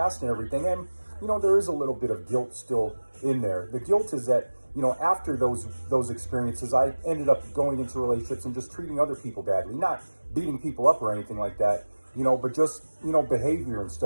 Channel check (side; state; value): both; inverted; correlation -1.00